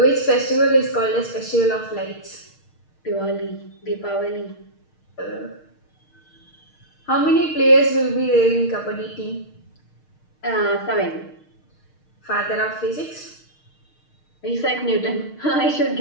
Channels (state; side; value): late; right; 6.5 ms